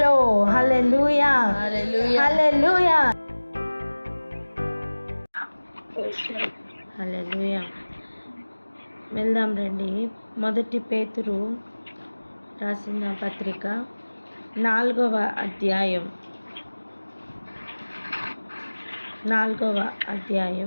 Hallelujah, hallelujah, hallelujah. వెళ్దాం రండి. మొదటి పేతురు రాసిన పత్రిక 4వ అధ్యాయం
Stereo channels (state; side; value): inverted; both; correlation -1.00